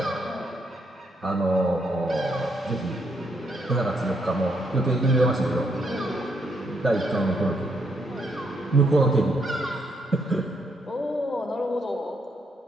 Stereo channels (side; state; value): both; normal; correlation 0.75